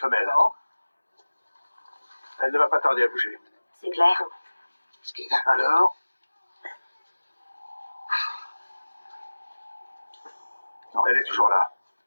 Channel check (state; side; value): inverted; both; correlation -1.00